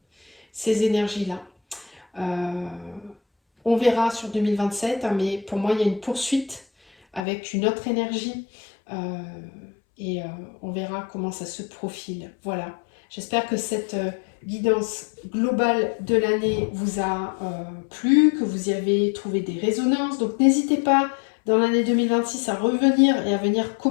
énergies-là. On verra sur 2027, hein, mais pour moi, il y a une poursuite avec une autre énergie. Et on verra comment ça se profile. Voilà. J'espère que cette guidance globale de l'année vous a plu, que vous y avez trouvé des résonances. Donc n'hésitez pas dans l'année 2026 à revenir et à venir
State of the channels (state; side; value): drops out; right; at 7.2 s